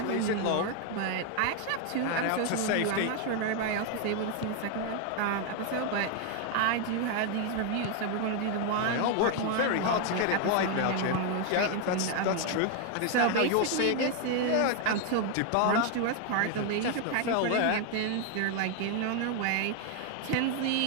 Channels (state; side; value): different; both; correlation 0.01